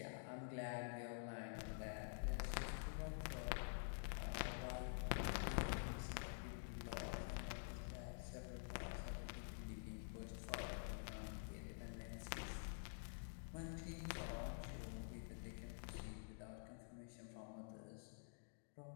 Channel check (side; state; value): right; silent; digital silence